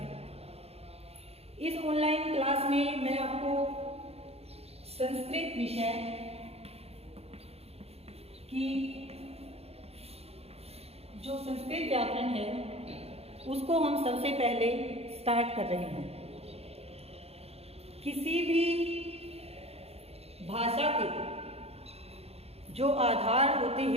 इस ऑनलाइन क्लास में मैं आपको संस्कृत विषय की जो संस्कृत व्याकरण है उसको हम सबसे पहले स्टार्ट कर रहे हैं। किसी भी भाषा के जो आधार होते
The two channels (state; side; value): late; left; 0.29 ms